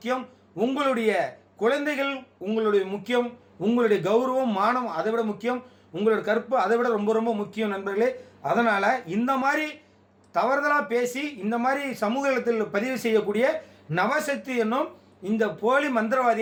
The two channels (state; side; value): identical; both; correlation 1.00